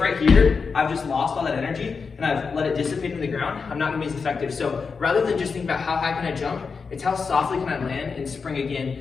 right here, I've just lost all that energy and I've let it dissipate in the ground, I'm not gonna be as effective. So rather than just think about how high can I jump, it's how softly can I land and spring again.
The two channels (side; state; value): right; quieter; 5.2 dB